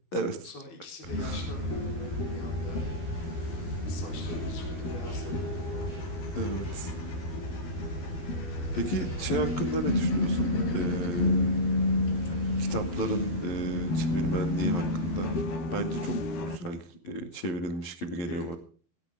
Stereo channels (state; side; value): late; right; 11 ms